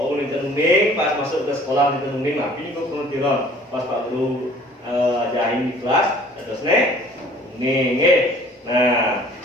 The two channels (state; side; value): normal; both; correlation 0.52